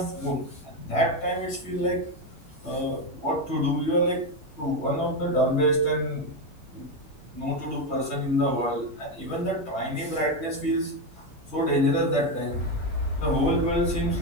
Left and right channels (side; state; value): both; normal; correlation 0.10